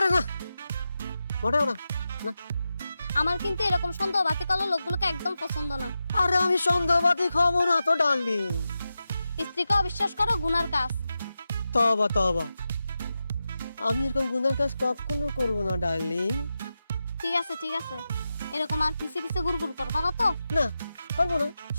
না মোটেও না আমার কিন্তু এরকম সন্দেহবাদী কালো লোকগুলোকে একদম পছন্দ না। আরে আমি সন্দেহবাদী খাবো না তো ডার্লিং। স্ত্রীকে অবিশ্বাস করো গুনার কাজ। তবা আমি এরকম গুনার কাজ কখনো করবো না ডার্লিং। ঠিক আছে এরকম আর পিছে পিছে গুড়গুড় করবা না তো? না করবো না।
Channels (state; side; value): inverted; both; correlation -0.91